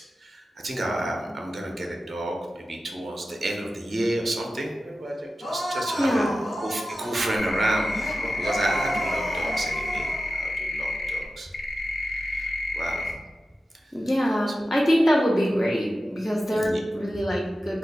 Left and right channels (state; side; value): normal; both; correlation 0.93